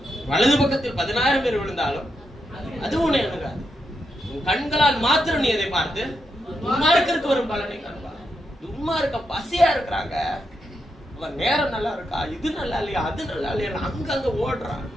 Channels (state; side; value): normal; both; correlation 0.84